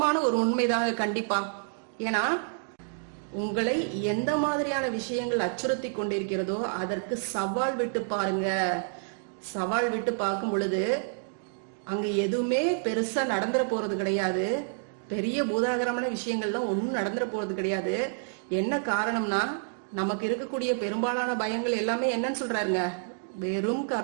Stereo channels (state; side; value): silent; left; digital silence